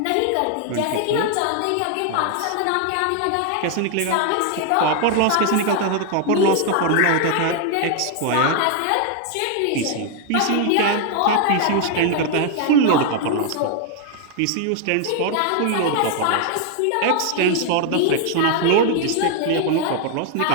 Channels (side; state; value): both; different; correlation 0.00